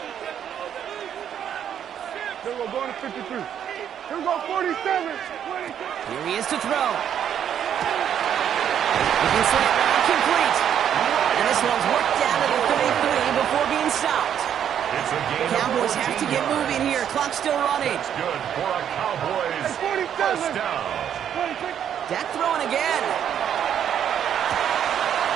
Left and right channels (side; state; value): left; quieter; 9.3 dB